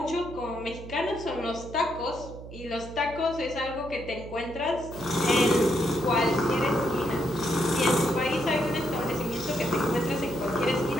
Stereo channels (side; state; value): right; noise; hum, 13 dB below the sound